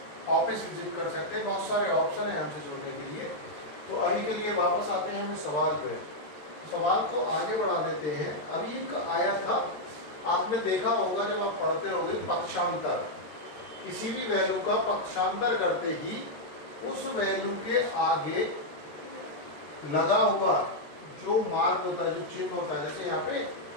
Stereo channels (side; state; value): right; late; 13 ms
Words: ऑफिस विजिट कर सकते हैं। बहुत सारे ऑप्शन हैं हमसे जुड़ने के लिए। तो अभी के लिए वापस आते हैं हम सवाल पे। सवाल को आगे बढ़ा देते हैं। अभी का आया था, आपने देखा होगा जब आप पढ़ते होंगे पक्षांतर, किसी भी वैल्यू का पक्षांतर करते ही उस वैल्यू के आगे लगा हुआ जो मार्क होता है, जो चिन्ह होता है, जैसे यहाँ पे